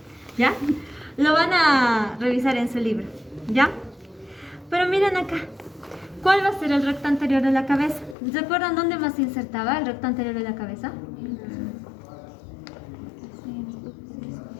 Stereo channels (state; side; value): drops out; right; at 8.2 s